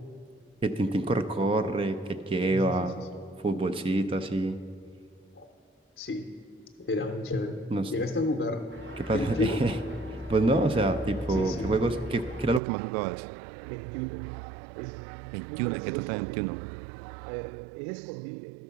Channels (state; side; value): drops out; left; at 12.6 s